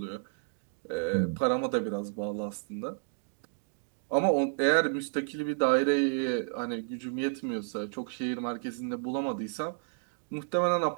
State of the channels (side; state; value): left; silent; digital silence